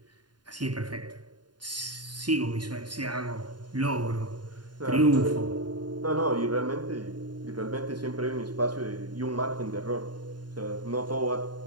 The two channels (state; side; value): late; left; 0.70 ms